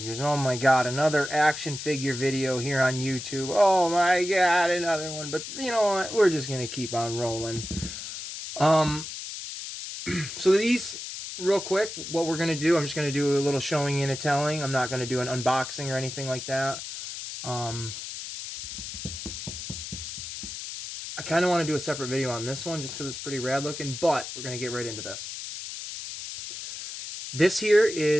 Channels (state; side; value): noise; left; hiss, 8 dB below the sound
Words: Oh my god, another action figure video here on YouTube. Oh my god, another one. But you know what? We're just going to keep on rolling. Um, So these, real quick, what we're going to do, I'm just going to do a little showing and a telling. I'm not going to do an unboxing or anything like that. Um, I kind of want to do a separate video on this one just because it's pretty rad looking, but we're going to get right into this. This here